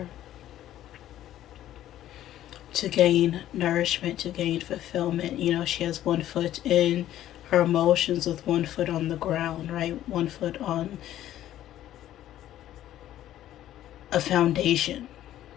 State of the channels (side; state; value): right; quieter; 12.7 dB